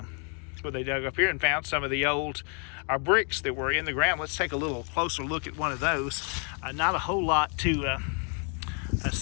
where they dug up here and found some of the old bricks that were in the ground. Let's take a little closer look at one of those. Not a whole lot to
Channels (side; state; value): right; quieter; 39.5 dB